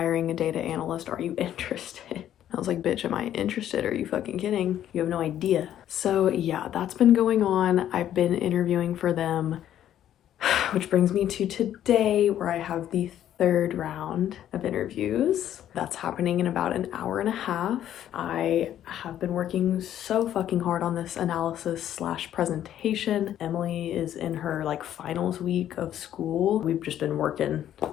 a data analyst. Are you interested? I was like, bitch, am I interested? Are you fucking kidding? You have no idea. So yeah, that's been going on. I've been interviewing for them, which brings me to today where I have the third round of interviews. That's happening in about an hour and a half. I have been working so fucking hard on this analysis / presentation. Emily is in her like finals week of school. We've just been working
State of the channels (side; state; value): right; quieter; 11.2 dB